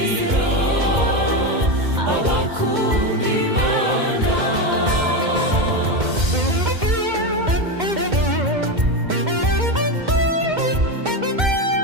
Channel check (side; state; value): left; late; 2.1 ms